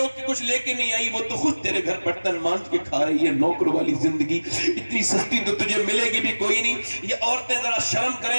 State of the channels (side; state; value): both; inverted; correlation -1.00